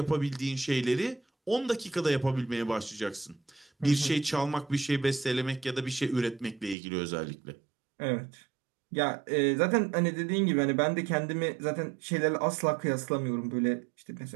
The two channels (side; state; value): left; drops out; at 6.8 s